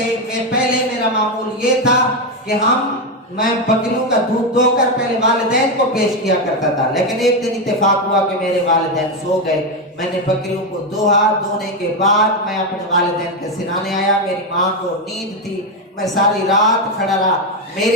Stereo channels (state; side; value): normal; both; correlation 0.08